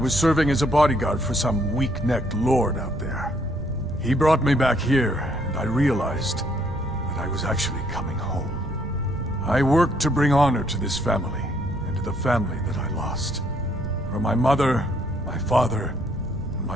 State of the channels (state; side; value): noise; right; rumble, 11 dB below the sound